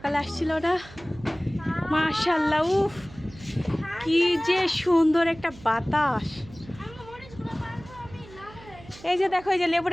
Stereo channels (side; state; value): right; noise; hum, 20 dB below the sound